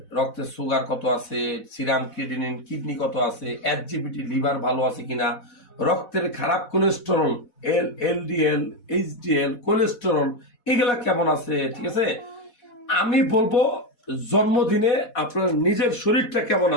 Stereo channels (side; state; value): right; late; 4.1 ms